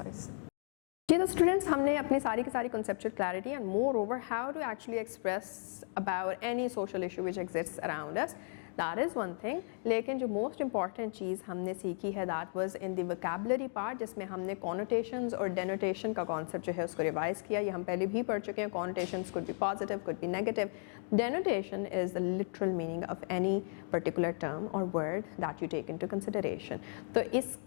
Okay, the students, हमने अपनी सारी की सारी conceptual clarity and moreover how to actually express about any social issue which exists around us. That is one thing. लेकिन जो most important चीज़ हमने सीखी है that was in the vocabulary part, जिसमें हमने connotations और denotation का concept जो है उसको revise किया. ये हम पहले भी पढ़ चुके हैं. Connotations could be positive, could be negative. Denotation is the literal meaning of any particular term or word that you take into consideration. तो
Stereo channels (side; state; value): right; silent; 54 dB below the other